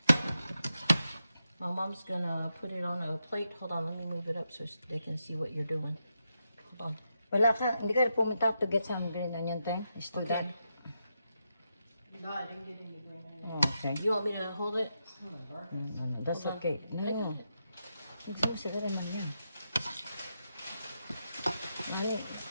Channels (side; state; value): both; inverted; correlation -0.85